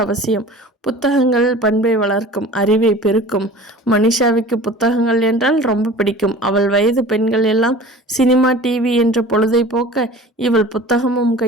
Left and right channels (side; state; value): both; normal; correlation 0.42